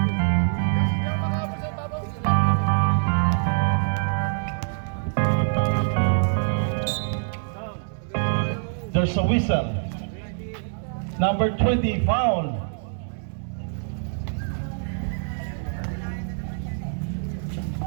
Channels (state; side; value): silent; left; digital silence